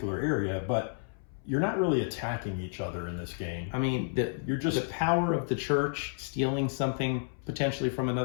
area, but you're not really attacking each other in this game. I mean, the power of the church stealing something potentially from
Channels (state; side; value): silent; right; 57 dB below the other